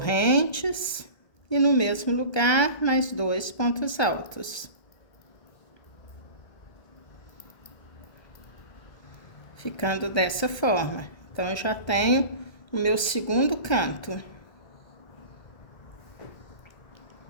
e no mesmo lugar mais 2 pontos altos. Ficando dessa forma. Então, eu já tenho o meu segundo canto.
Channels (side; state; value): right; late; 1.3 ms